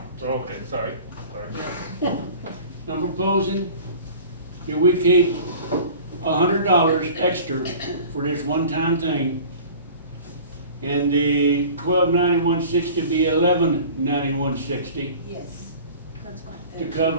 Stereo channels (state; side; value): inverted; both; correlation -0.43